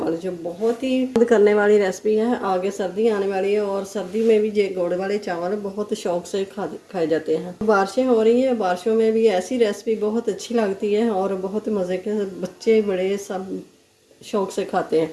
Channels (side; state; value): both; identical; correlation 1.00